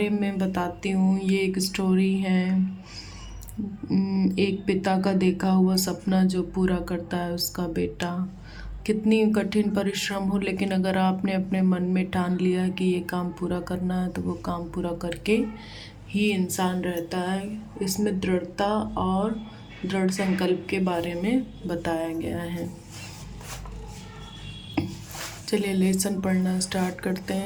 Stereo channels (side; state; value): both; identical; correlation 1.00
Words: में बताती हूँ। ये एक स्टोरी है, एक पिता का देखा हुआ सपना जो पूरा करता है उसका बेटा। कितनी कठिन परिश्रम हो, लेकिन अगर आपने अपने मन में ठान लिया कि ये काम पूरा करना है तो वो काम पूरा करके ही इंसान रहता है। इसमें दृढ़ता और दृढ़ संकल्प के बारे में बताया गया है। चलिए लेसन पढ़ना स्टार्ट करते